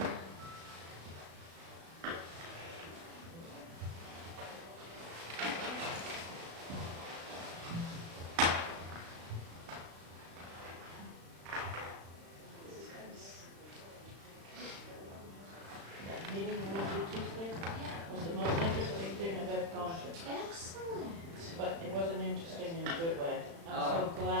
That meeting Wednesday, Tuesday was the most interesting thing I've ever gone to. Excellent. But it wasn't interesting in a good way. I'm so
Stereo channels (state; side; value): late; left; 36 ms